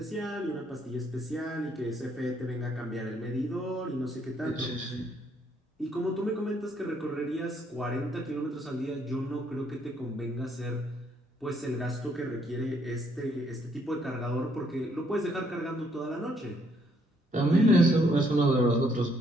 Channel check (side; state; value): both; normal; correlation 0.69